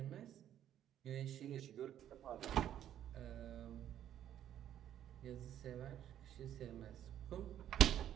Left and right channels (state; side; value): quieter; left; 10.9 dB